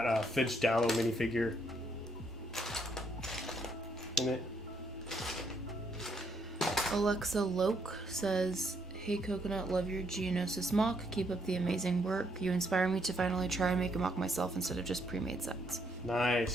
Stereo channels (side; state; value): both; normal; correlation 0.73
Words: Finch Dallow minifigure in it. Alexa Loke says, hey Coconut, love your Geonosis mock. Keep up the amazing work. You inspire me to finally try and make a mock myself instead of just pre-made sets.